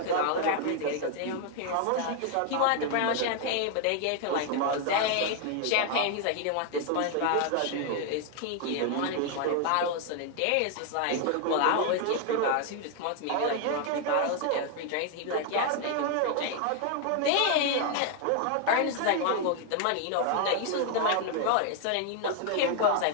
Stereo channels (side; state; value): both; different; correlation 0.00